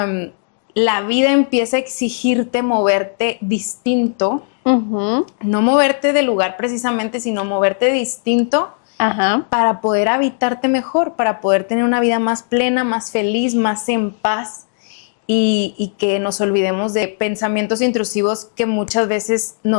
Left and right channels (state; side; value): silent; right; digital silence